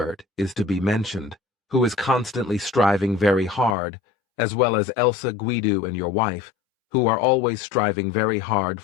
is to be mentioned, who is constantly striving very hard, as well as Elsa Guido and your wife, who are always striving very hard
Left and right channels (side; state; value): right; drops out; at 3.8 s